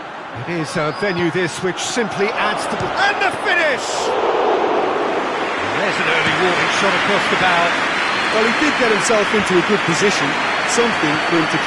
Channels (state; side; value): identical; both; correlation 1.00